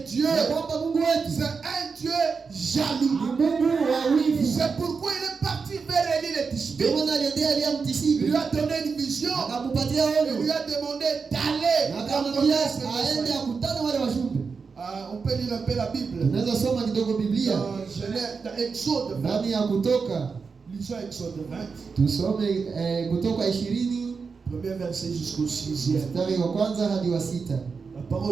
Dieu, ya kwamba Mungu wetu c'est un Dieu jaloux. ni Mungu wa wivu. C'est pourquoi il est parti vers Élie le Ndio Tishbite. maana aliendea Elia Il Mtisibi, lui a donné une vision. akampatia Il lui ono a demandé d'aller na rencontrer akamwambia ce aende messager. akutane wale wajumbe. On peut lire un peu la Bible. Tunaweza soma kidogo Biblia Dans Genèse, dans Exode 20. ndani ya Kutoka, Lisons Exode 20, tusome Kutoka 20 premier verset jusqu'au 6e. mstari wa kwanza hadi wa 6. La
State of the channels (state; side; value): quieter; left; 5.1 dB